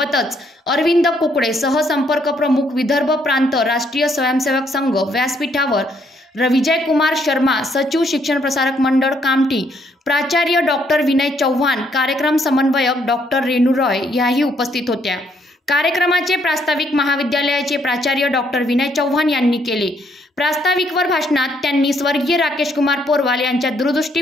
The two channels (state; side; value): normal; both; correlation 0.70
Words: अरविंद कुकडे, सहसंपर्क प्रमुख विदर्भ प्रांत राष्ट्रीय स्वयंसेवक संघ व्यासपीठावर, विजय कुमार शर्मा, सचिव शिक्षण प्रसारक मंडळ कामठी, प्राचार्य डॉक्टर विनय चव्हाण, कार्यक्रम समन्वयक डॉक्टर रेणू रॉय याही उपस्थित होत्या। कार्यक्रमाचे प्रास्ताविक महाविद्यालयाचे प्राचार्य डॉक्टर विनय चव्हाण यांनी केले। प्रास्ताविकवर भाषणात त्यांनी स्वर्गीय राकेश कुमार पोरवाल यांच्या